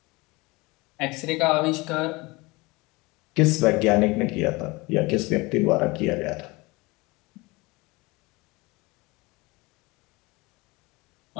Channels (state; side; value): quieter; right; 23.9 dB